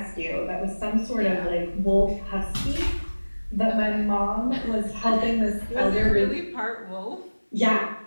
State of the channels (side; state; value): both; inverted; correlation -1.00